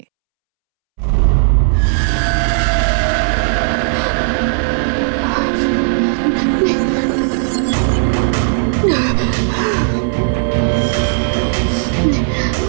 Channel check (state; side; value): silent; left; 70 dB below the other